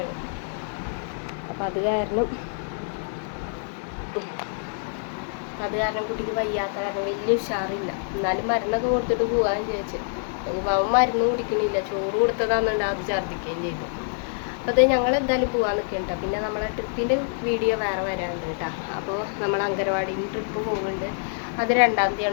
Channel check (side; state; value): right; silent; 58 dB below the other